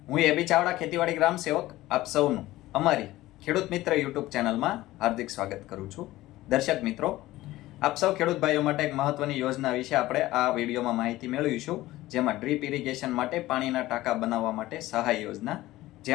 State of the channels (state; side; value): quieter; right; 16.9 dB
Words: હું એબી ચાવડા ખેતીવાડી ગ્રામ સેવક આપ સૌનું અમારી ખેડૂત મિત્ર યુટ્યુબ ચેનલમાં હાર્દિક સ્વાગત કરું છું। દર્શક મિત્રો, આપ સૌ ખેડૂત ભાઈઓ માટે એક મહત્વની યોજના વિશે આપણે આ વિડીયોમાં માહિતી મેળવીશું, જેમાં ડ્રીપ ઇરિગેશન માટે પાણીના ટાંકા બનાવવા માટે સહાય યોજના,